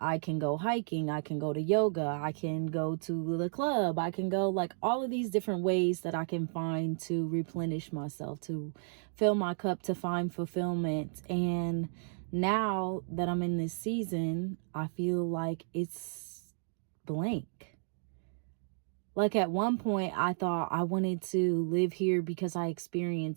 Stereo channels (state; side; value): silent; left; digital silence